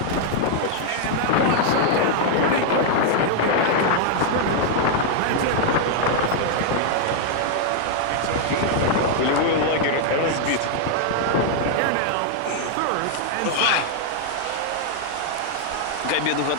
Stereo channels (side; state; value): both; different; correlation 0.00